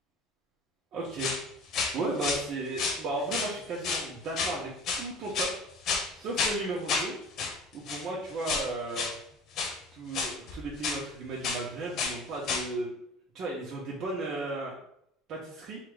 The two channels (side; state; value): both; normal; correlation 0.41